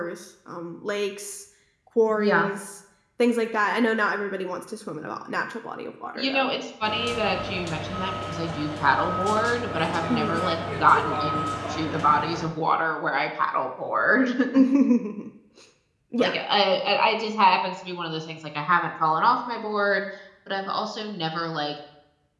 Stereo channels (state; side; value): identical; both; correlation 1.00